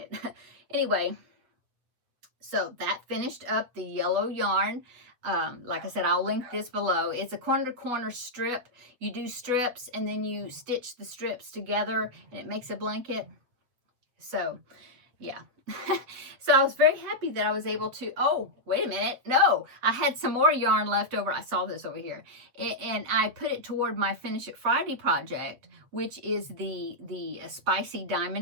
Anyway, so that finished up the yellow yarn. Like I said, I'll link this below. It's a corner-to-corner strip. You do strips, and then you stitch the strips together, and it makes a blanket. So, yeah. So I was very happy that I was able to, oh, wait a minute. No, I had some more yarn left over. I saw this over here. And I put it toward my Finish It Friday project, which is the spicy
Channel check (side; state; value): left; late; 8.3 ms